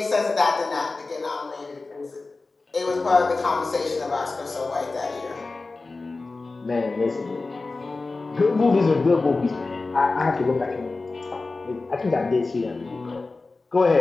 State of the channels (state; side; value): quieter; right; 3.6 dB